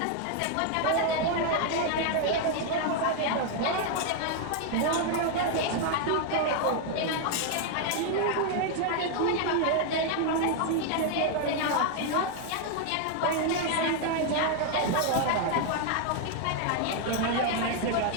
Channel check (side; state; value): both; different; correlation 0.00